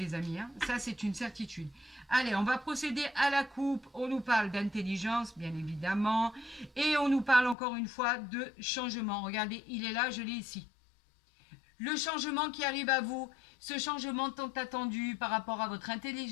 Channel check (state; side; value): drops out; right; at 7.6 s